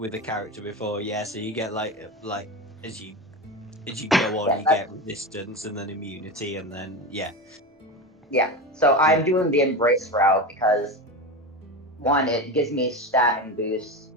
a character before. Yeah, so you get like as you go on, Yeah, you get resistance and then immunity, and then yeah. So I'm doing the embrace route because one, it gives me stat and boost.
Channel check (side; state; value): both; normal; correlation 0.22